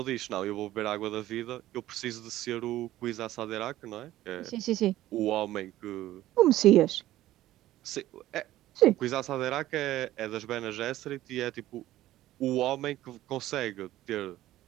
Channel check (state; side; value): quieter; left; 14.8 dB